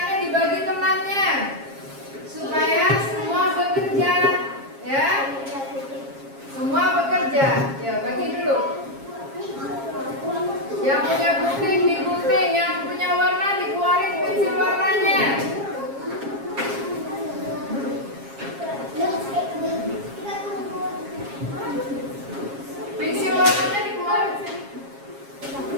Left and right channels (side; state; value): left; late; 7.4 ms